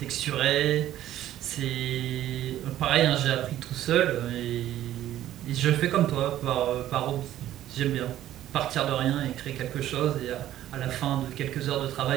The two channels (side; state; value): left; quieter; 12.9 dB